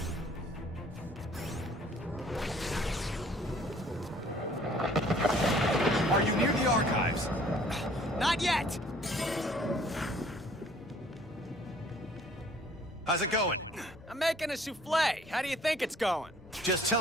Are you near the archives? Not yet! How's it going? I'm making a souffle. How do you think it's going? Just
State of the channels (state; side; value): normal; both; correlation 0.57